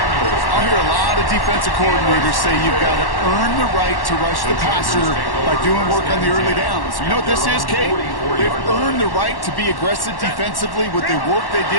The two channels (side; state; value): right; late; 1.1 ms